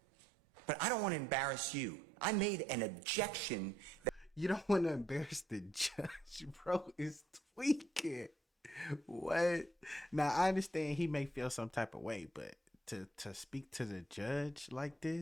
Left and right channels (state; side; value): normal; both; correlation 0.71